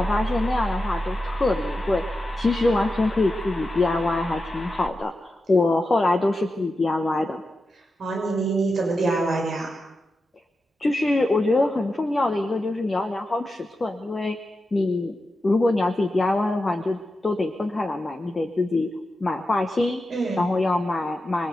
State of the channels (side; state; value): both; normal; correlation 0.90